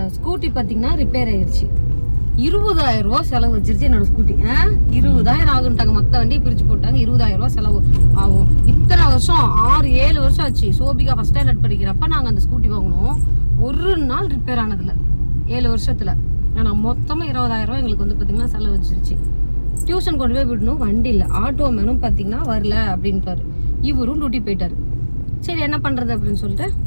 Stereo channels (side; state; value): both; inverted; correlation -1.00